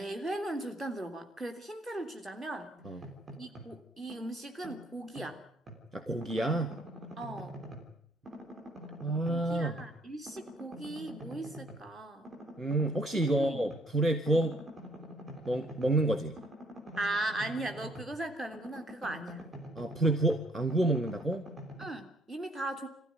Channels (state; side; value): normal; both; correlation 0.65